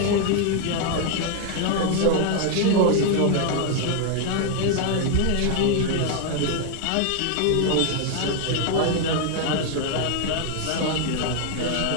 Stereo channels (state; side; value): different; both; correlation 0.00